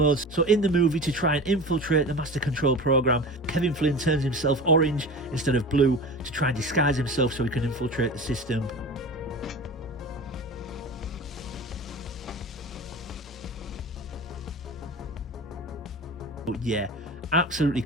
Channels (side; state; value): both; normal; correlation 0.33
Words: So in the movie, to try and infiltrate the Master Control program, Kevin Flynn turns himself orange instead of blue to try and disguise himself so he can infiltrate the system. But yeah, absolutely